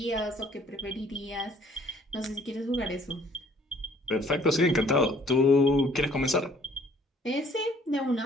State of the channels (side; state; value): both; normal; correlation 0.59